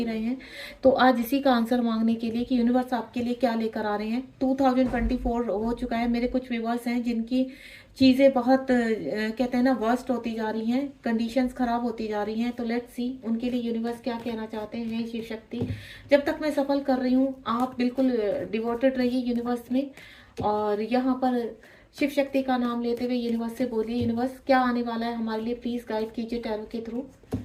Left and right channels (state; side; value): identical; both; correlation 1.00